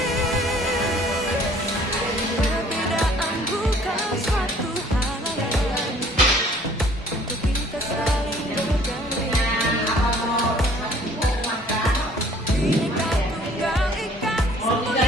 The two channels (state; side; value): normal; both; correlation 0.56